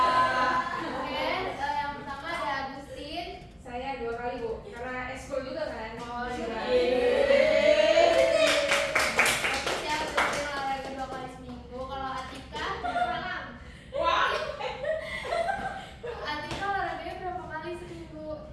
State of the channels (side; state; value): both; identical; correlation 1.00